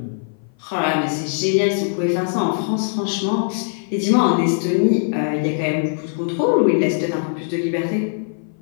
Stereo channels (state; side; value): silent; right; 57 dB below the other